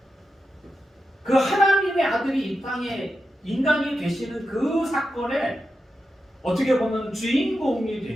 그 하나님의 아들이 이 땅에 인간이 되시는 그 사건에 어떻게 보면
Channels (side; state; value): both; normal; correlation 0.89